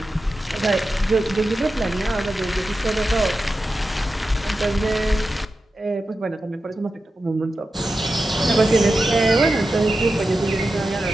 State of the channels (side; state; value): both; normal; correlation 0.91